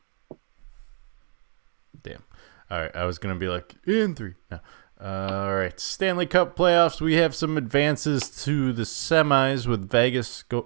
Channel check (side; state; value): left; silent; digital silence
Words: Damn. All right, I was going to be like, in 3. No. All right, Stanley Cup playoffs. We have some advances to the semis with Vegas